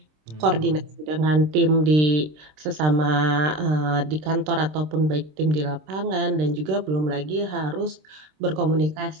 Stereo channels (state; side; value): late; left; 26 ms